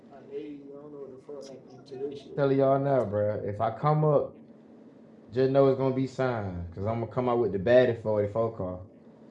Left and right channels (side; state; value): both; identical; correlation 1.00